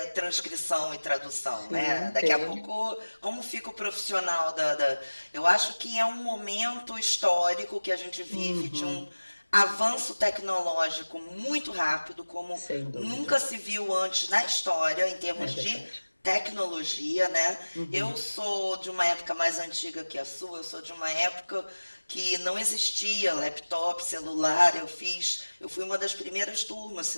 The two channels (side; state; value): both; inverted; correlation -1.00